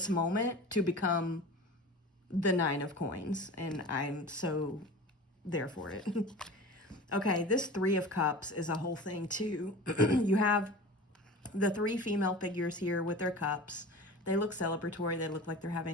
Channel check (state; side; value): normal; both; correlation 0.36